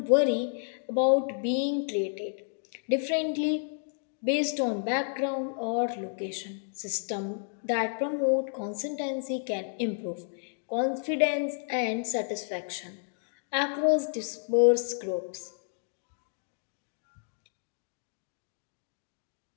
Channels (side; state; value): right; silent; digital silence